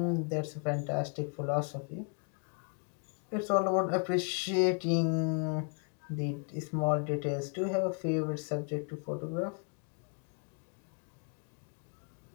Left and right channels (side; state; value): right; quieter; 38.5 dB